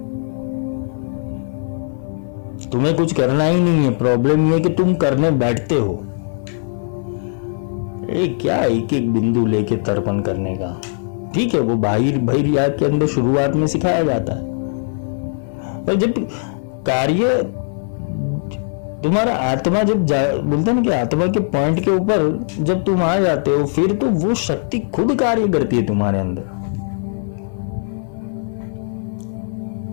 तुम्हें कुछ करना ही नहीं है। प्रॉब्लम यह है कि तुम करने बैठते हो। क्या एक एक बिंदु लेके तर्पण करने का, ठीक है, वो बाहर याद के अंदर शुरुआत में सिखाया जाता है, पर जब कार्य तुम्हारा आत्मा जब बोलते हैं ना कि आत्मा के पॉइंट के ऊपर जब तुम आ जाते हो, फिर तो वो शक्ति खुद कार्य करती है तुम्हारे अंदर।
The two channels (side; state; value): right; silent; 56 dB below the other